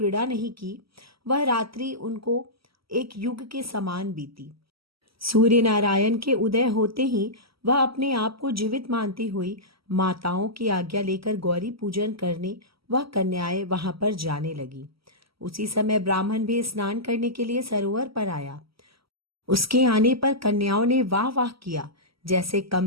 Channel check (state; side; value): late; left; 0.75 ms